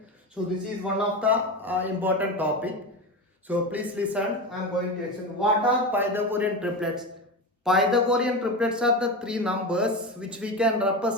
So this is one of the important topic. So please listen, I am going to explain what are Pythagorean triplets. Pythagorean triplets are the three numbers which we can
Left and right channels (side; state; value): both; normal; correlation 0.21